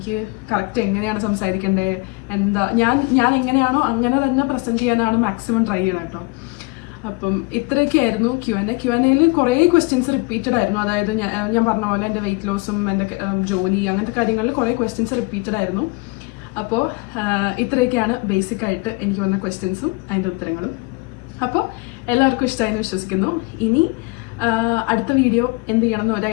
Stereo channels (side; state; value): right; quieter; 26.0 dB